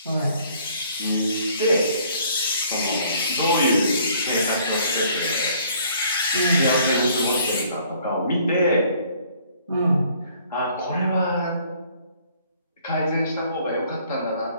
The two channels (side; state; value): both; inverted; correlation -0.60